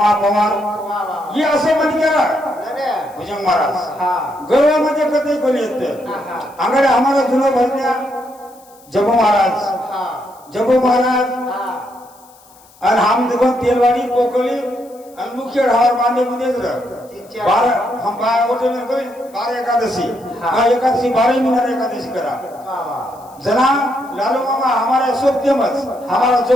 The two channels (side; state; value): left; noise; hiss, 27 dB below the sound